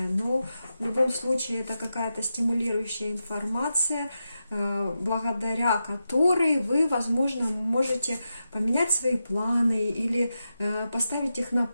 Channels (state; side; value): inverted; both; correlation -0.89